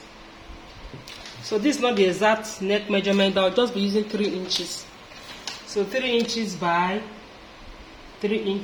the exact neck measurement. I'll just be using 3 inches. So 3 inches by 3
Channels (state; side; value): identical; both; correlation 1.00